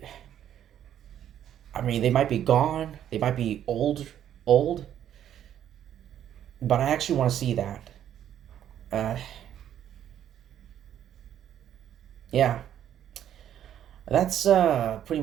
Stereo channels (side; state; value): left; quieter; 10.5 dB